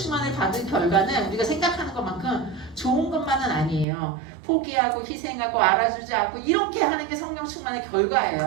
받은 결과는 우리가 생각하는 것만큼 좋은 것만은 아니에요. 포기하고 희생하고 알아주지 않고 이렇게 하는 게 성령 충만의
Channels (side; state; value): left; drops out; at 3.9 s